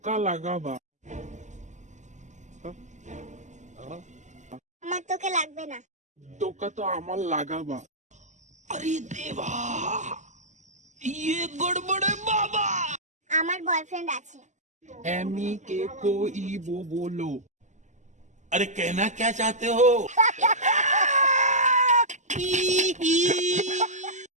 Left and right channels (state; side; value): late; left; 0.34 ms